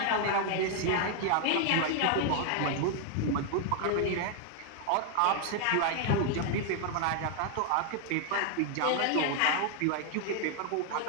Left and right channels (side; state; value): both; different; correlation 0.00